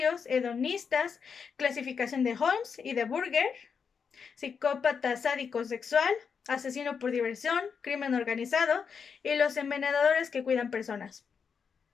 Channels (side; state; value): right; quieter; 6.2 dB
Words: hedonistas, clasificación de Holmes y de Burger, psicópata sádico sexual, asesino por diversión, crimen organizado y los envenenadores que cuidan personas.